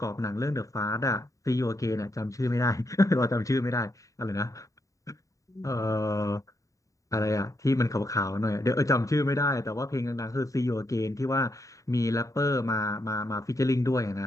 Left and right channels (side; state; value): right; late; 0.16 ms